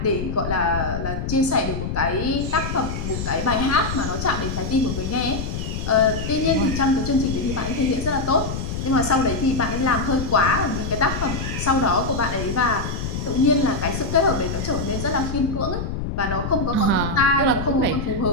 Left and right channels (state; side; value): noise; left; rumble, 4 dB below the sound